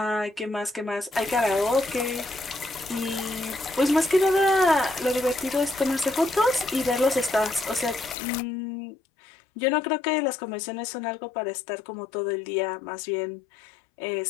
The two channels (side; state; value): right; drops out; at 8.2 s